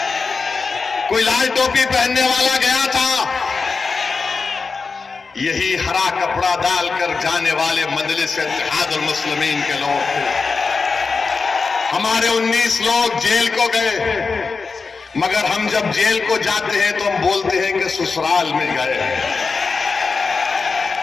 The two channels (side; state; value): right; quieter; 4.6 dB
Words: कोई लाल टोपी पहनने वाला गया था? यही हरा कपड़ा डालकर जाने वाले मजलिस इत्तेहादुल मुस्लिमीन के लोग थे। हमारे 19 लोग जेल को गए, मगर हम जब जेल को जाते हैं तो हम बोलते हैं कि ससुराल में गए।